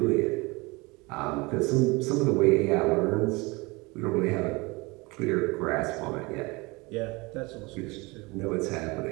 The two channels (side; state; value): left; quieter; 25.1 dB